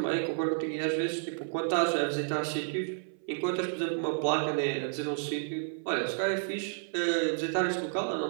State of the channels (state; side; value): silent; left; 57 dB below the other